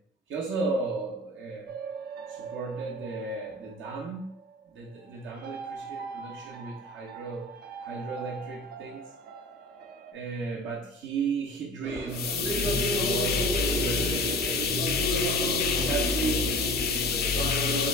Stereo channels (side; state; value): both; normal; correlation 0.38